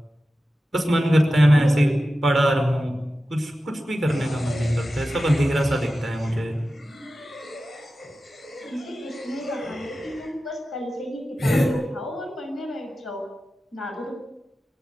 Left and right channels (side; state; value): both; normal; correlation 0.93